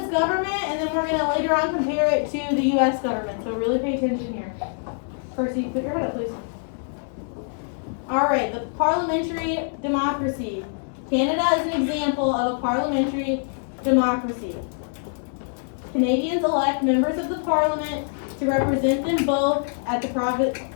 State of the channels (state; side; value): silent; right; digital silence